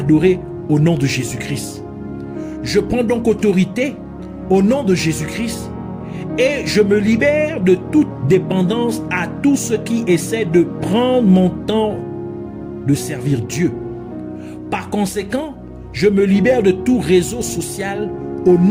au nom de Jésus-Christ. Je prends donc autorité au nom de Jésus-Christ et je me libère de toute dépendance à tout ce qui essaie de prendre mon temps de servir Dieu. Par conséquent, je me libère de tout réseau social au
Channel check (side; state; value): both; identical; correlation 1.00